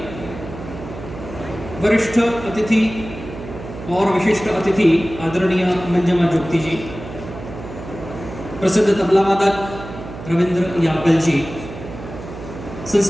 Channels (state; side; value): noise; right; hum, 12 dB below the sound